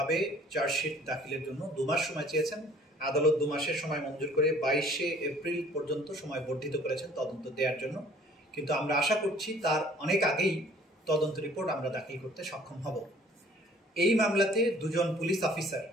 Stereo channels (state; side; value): normal; both; correlation 0.54